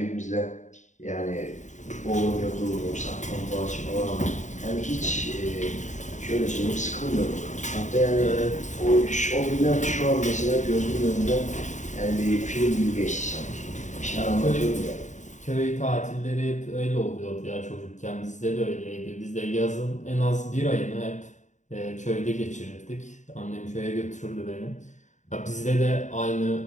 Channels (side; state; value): right; late; 0.35 ms